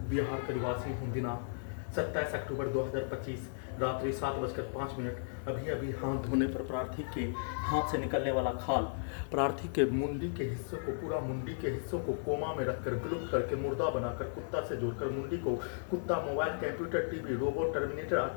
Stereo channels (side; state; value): right; silent; digital silence